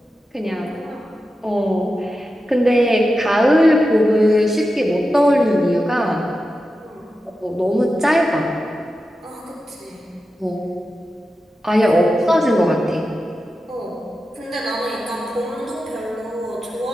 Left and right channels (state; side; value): normal; both; correlation 0.91